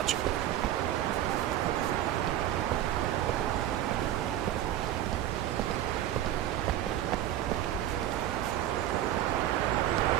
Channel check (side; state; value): left; quieter; 12.4 dB